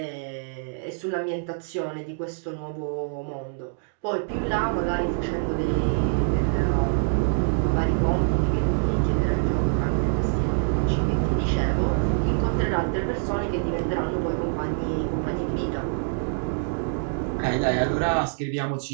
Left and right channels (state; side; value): silent; left; digital silence